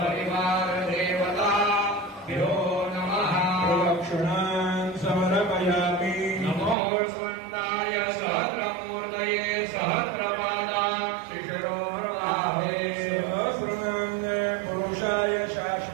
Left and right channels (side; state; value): left; drops out; at 6.8 s